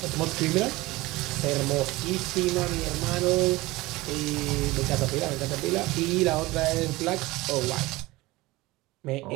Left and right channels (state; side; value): quieter; left; 20.3 dB